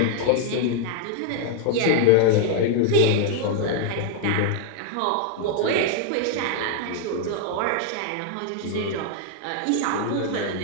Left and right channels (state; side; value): different; both; correlation 0.00